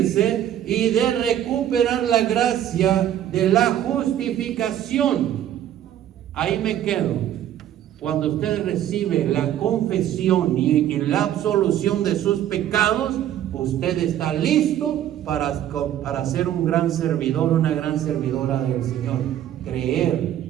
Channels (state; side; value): quieter; left; 11.3 dB